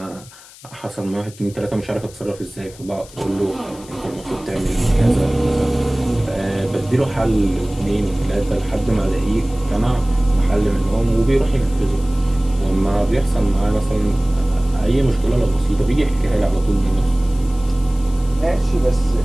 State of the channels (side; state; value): left; noise; hiss, 21 dB below the sound